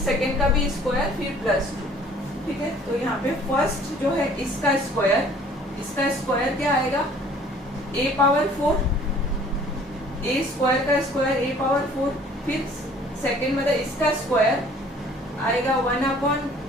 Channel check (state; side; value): normal; both; correlation 0.54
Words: सेकंड का भी स्क्वायर, फिर प्लस 2, ठीक है। तो यहाँ पे फर्स्ट जो है इसका स्क्वायर क्या आएगा, a पावर 4, a स्क्वायर का स्क्वायर a पावर 4, फिर सेकंड मतलब इसका स्क्वायर आएगा 1 अपॉन